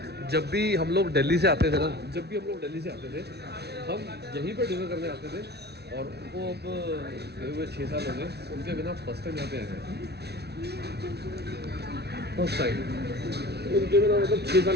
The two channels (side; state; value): left; late; 0.48 ms